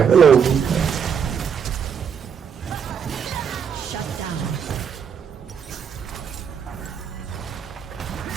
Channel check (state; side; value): quieter; left; 7.2 dB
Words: luồng. Shut down.